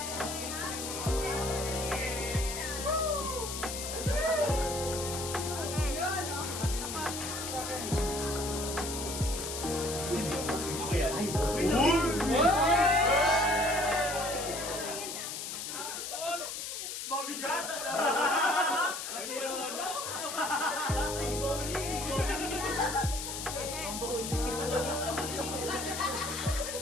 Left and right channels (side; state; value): left; noise; hiss, 5 dB below the sound